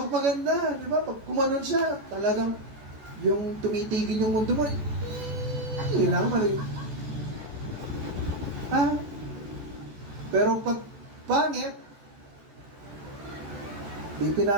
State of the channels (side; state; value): left; late; 14 ms